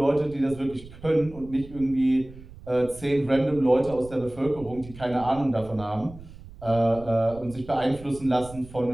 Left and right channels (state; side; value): noise; right; rumble, 17 dB below the sound